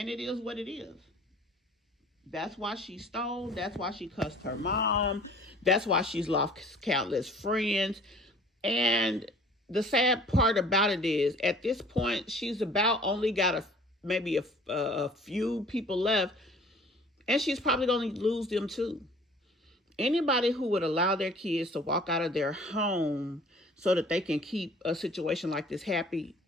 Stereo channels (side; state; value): both; normal; correlation 0.50